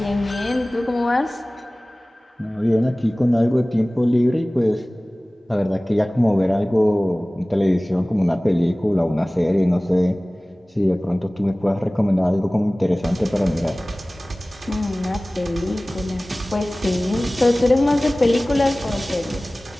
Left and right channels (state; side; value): normal; both; correlation 0.98